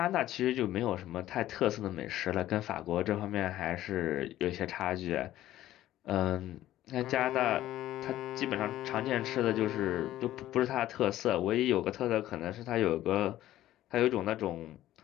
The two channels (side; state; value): right; quieter; 14.0 dB